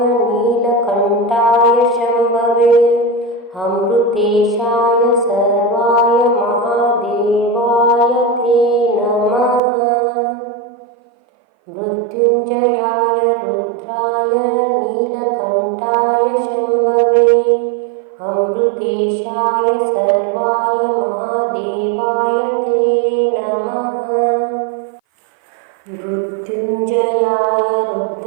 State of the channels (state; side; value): drops out; left; at 9.6 s